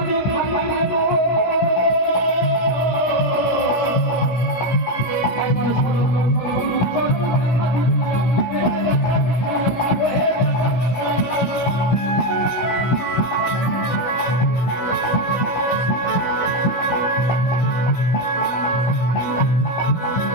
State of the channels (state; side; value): late; right; 17 ms